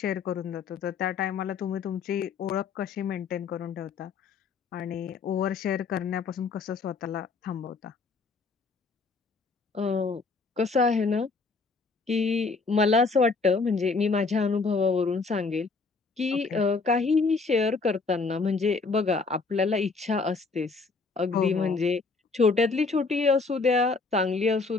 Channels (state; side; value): quieter; right; 4.3 dB